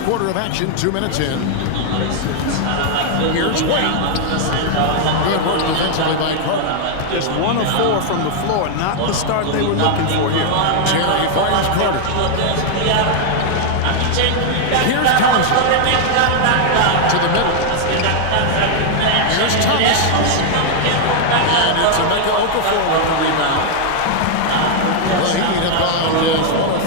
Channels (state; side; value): different; both; correlation 0.00